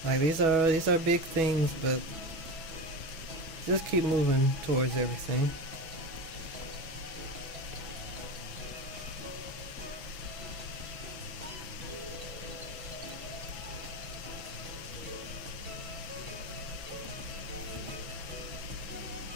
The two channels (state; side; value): late; left; 6.0 ms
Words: Like these are big things, but just keep moving towards everything.